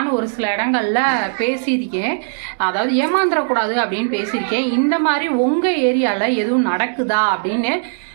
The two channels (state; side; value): silent; left; digital silence